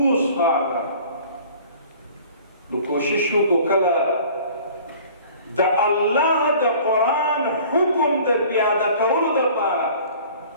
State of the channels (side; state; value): both; inverted; correlation -0.48